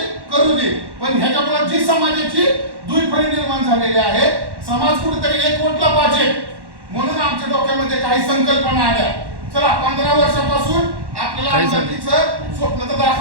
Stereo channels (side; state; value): left; late; 1.1 ms